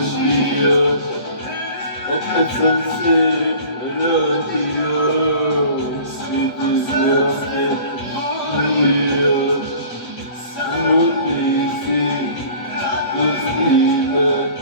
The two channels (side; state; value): right; late; 7.9 ms